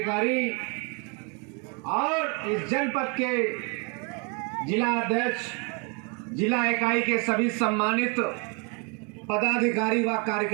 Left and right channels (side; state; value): left; quieter; 34.1 dB